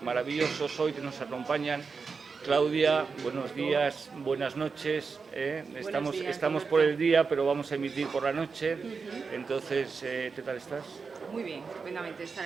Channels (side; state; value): left; quieter; 5.0 dB